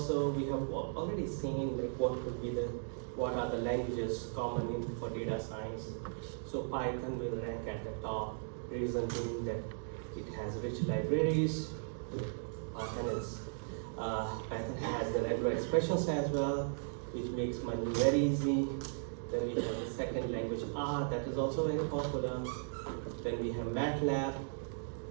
We have already seen like what are the languages common for data science. So Python will rank at the top, reason being that it has rich libraries. Python has the regular expressions as well, which makes money very easy. Then we have the second language R, that is also very popular. Then we have MATLAB.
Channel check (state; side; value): silent; left; digital silence